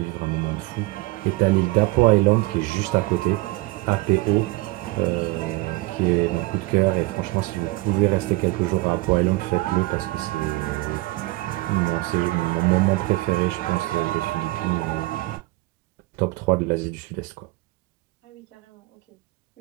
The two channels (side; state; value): left; quieter; 21.6 dB